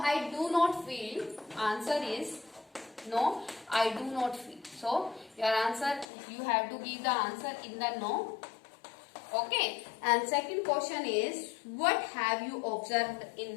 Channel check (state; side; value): drops out; right; at 6.1 s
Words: I do not feel. Answer is no, I do not feel. So your answer, you have to give the answer in the no. Okay. And second question is, what have you observed in